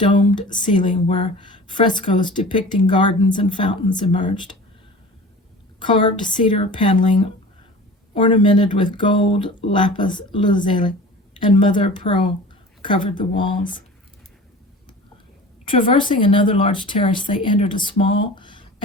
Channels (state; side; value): normal; both; correlation 0.39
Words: ceiling where frescoes depicting gardens and fountains emerged. Carved cedar paneling ornamented with gold, lapis lazuli, and mother of pearl covered the walls. Traversing another large terrace, they entered a small,